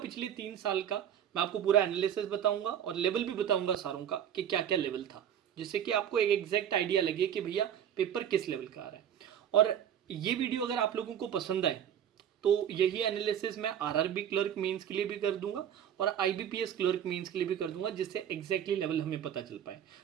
3 साल का मैं आपको पूरा एनालिसिस बताऊंगा और लेवल भी बताऊंगा सारों का कि क्या क्या लेवल था, जिससे कि आपको एक एग्जैक्ट आइडिया लगे कि भैया पेपर किस लेवल का आ रहा है। और ये वीडियो अगर आप लोगों को पसंद आए तो यही एनालिसिस मैं आरआरबी क्लर्क मेंस के लिए भी कर दूंगा और आईबीपीएस क्लर्क मेंस के लिए भी कर दूंगा, जिससे एग्जैक्टली लेवल हमें पता चल पाए।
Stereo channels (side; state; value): left; quieter; 9.5 dB